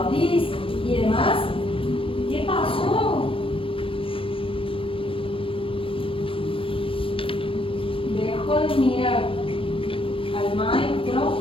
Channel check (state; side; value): late; right; 0.26 ms